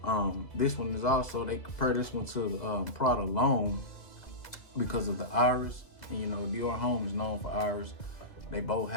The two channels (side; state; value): right; late; 2.0 ms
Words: This one is also, they compare this one to the Prada L'Homme because of the iris. And you know, Dior Homme is known for iris. They both